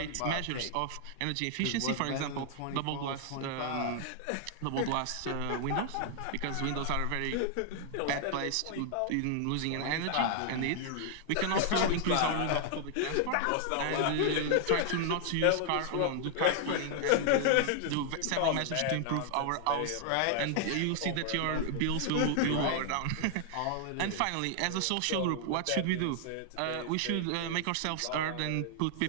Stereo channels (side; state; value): both; different; correlation 0.00